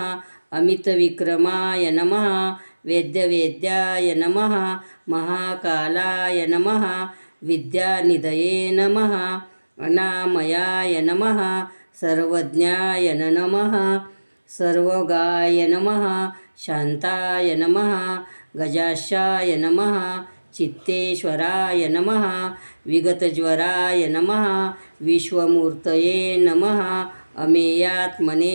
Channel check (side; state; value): both; inverted; correlation -1.00